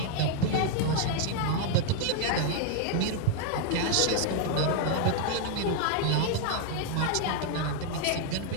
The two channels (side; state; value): both; different; correlation 0.00